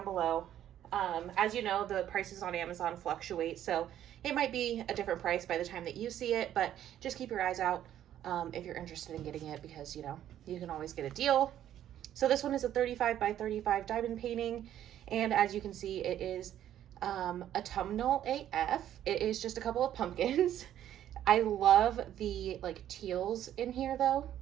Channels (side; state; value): left; quieter; 11.3 dB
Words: below. As you know, the prices on Amazon fluctuate, so it might be a different price by the time that you see it, but just keep your eyes out if you're interested in getting it, because you know, you can always get a deal. So this one is a 35 by 35 diamond painting, and as you can see, it is autumnal AF. It is just a couple of pumpkins. I love the like teals in here though.